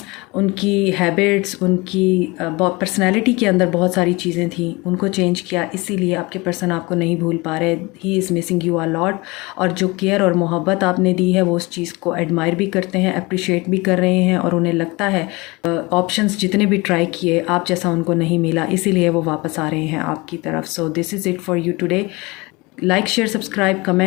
उनकी हैबिट्स, उनकी पर्सनैलिटी के अंदर बहुत सारी चीज़ें थी, उनको चेंज किया। इसीलिए आपके पर्सन आपको नहीं भूल पा रहे। He is missing you a lot. और जो केयर और मोहब्बत आपने दी है वो उस चीज़ को एडमायर भी करते हैं, अप्रिशिएट भी कर रहे हैं, और उन्हें लगता है ऑप्शंस जितने भी ट्राई किए आप जैसा उनको नहीं मिला, इसीलिए वो वापस आ रहे हैं आपकी तरफ। So this is it for you today. Like, share, subscribe,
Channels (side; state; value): right; quieter; 24.5 dB